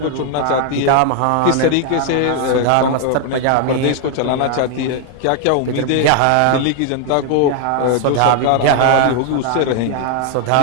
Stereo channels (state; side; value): different; both; correlation 0.00